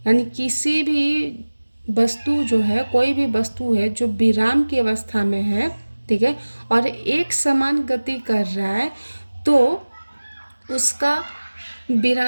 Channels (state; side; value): inverted; both; correlation -1.00